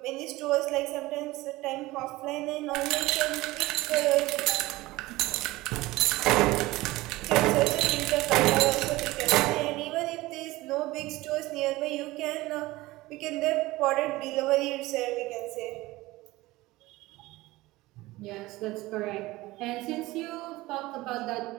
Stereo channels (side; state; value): left; quieter; 19.3 dB